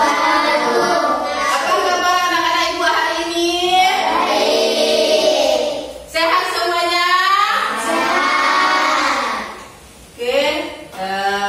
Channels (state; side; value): identical; both; correlation 1.00